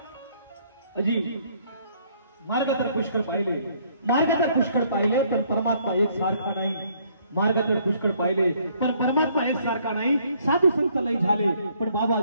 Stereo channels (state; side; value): inverted; both; correlation -0.65